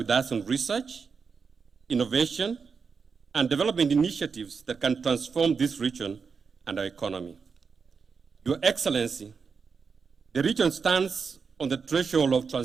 us on research, innovation, and development initiatives that can transform this region and our economy. Your Excellency, the region stands on the threshold of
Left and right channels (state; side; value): quieter; left; 5.5 dB